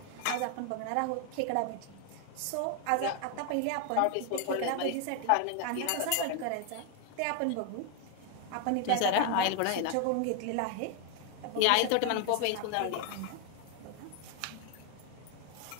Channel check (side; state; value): both; different; correlation 0.00